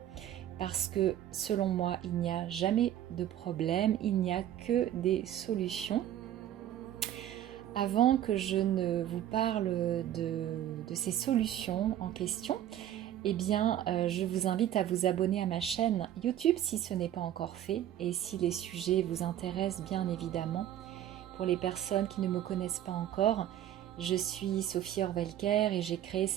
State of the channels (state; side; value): quieter; left; 11.6 dB